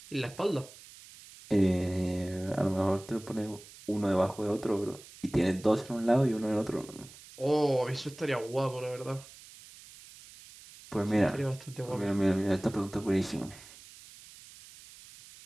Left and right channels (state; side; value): noise; right; hiss, 19 dB below the sound